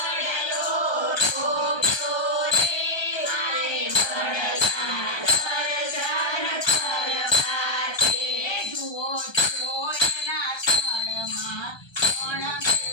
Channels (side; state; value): right; late; 1.3 ms